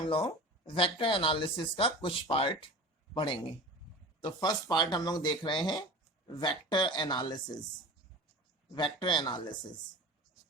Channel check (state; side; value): normal; both; correlation 0.36